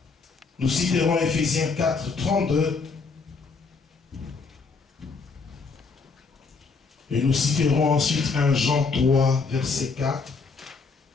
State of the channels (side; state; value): right; quieter; 4.6 dB